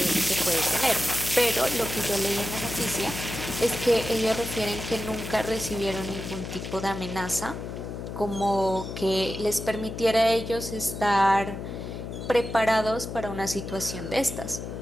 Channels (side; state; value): left; noise; hum, 7 dB below the sound